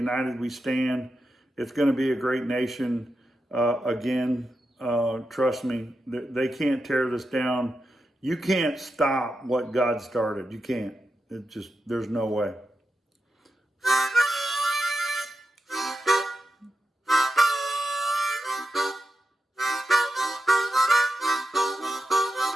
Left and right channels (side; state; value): both; normal; correlation 0.89